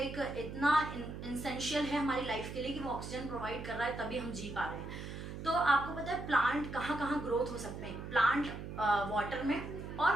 इतना इसेंशियल है हमारी लाइफ के लिए कि वो ऑक्सीजन प्रोवाइड कर रहा है, तभी हम जी पा रहे हैं। तो आपको पता है प्लांट कहाँ कहाँ ग्रोथ हो सकते हैं। प्लांट वाटर में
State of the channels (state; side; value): noise; right; hum, 8 dB below the sound